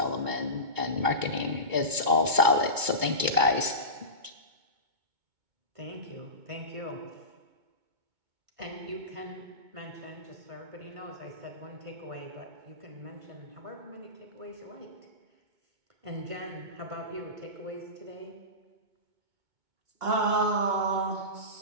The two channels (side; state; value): left; late; 2.2 ms